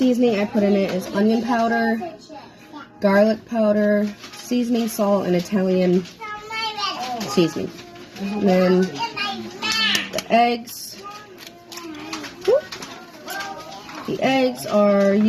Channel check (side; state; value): both; identical; correlation 1.00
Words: I put in it is onion powder, garlic powder, seasoning salt, and Italian seasoning. And then the eggs. The eggs are